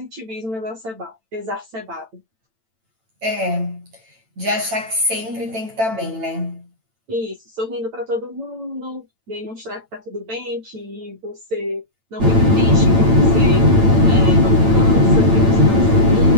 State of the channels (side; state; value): left; late; 8.9 ms